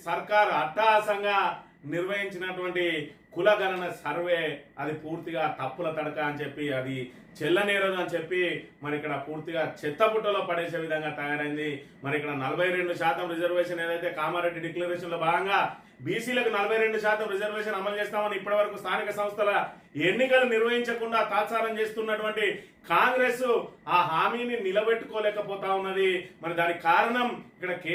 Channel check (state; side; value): identical; both; correlation 1.00